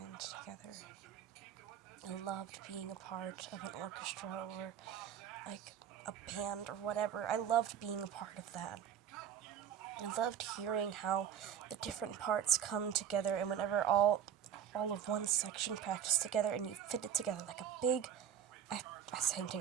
together. I loved being a part of an orchestra or like a band or whatever. I loved being a part of that. I loved hearing how the different parts come together, and whenever all of one section practice together and you fit it together like a big, I sang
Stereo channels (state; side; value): quieter; left; 8.9 dB